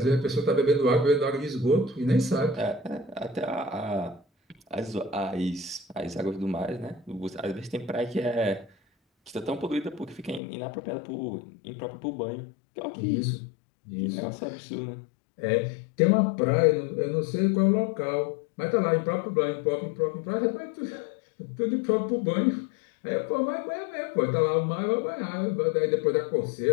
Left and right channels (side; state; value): right; drops out; at 10.4 s